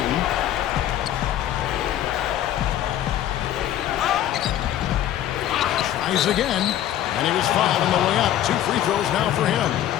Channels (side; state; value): right; quieter; 11.9 dB